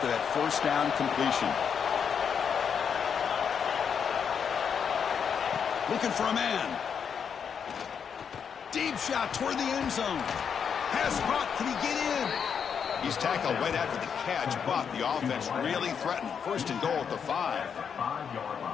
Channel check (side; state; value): right; quieter; 7.1 dB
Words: that 1st down completion. Looking for a man. Deep shot toward the end zone. Pass caught. Can he get in? He's tackled right after the catch, but the offense really threatened. 1st and goal at the